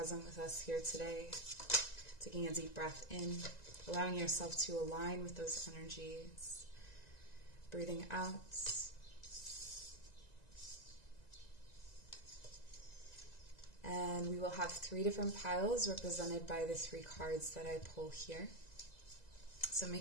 with us here today. Taking a deep breath in, allowing yourself to align with those energies. Breathing out. And we will have 3 different piles represented by the 3 cards that I pull here. So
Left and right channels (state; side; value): late; right; 1.9 ms